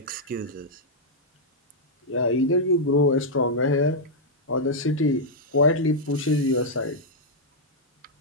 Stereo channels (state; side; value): normal; both; correlation -0.06